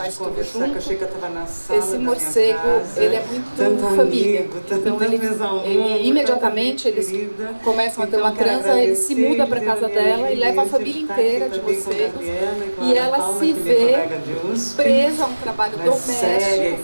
de conversar que eu achei que eu estava na sala Esse da morcego, minha casa, ele é muito tanto família. amigo, tanta Então, mesa ao ele mundo, imediatamente tanta gente eles querida. começam a ter Então, uma quero transa, ele se agradecer, muda para dizer casa a minha dela e leva a iminência família de estar aqui inteira de também com a vocês. Gabriela e com a E Ana ela Paula, se que é minha vê colega de USP. presa a um trabalho Mas séria e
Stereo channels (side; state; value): both; inverted; correlation -1.00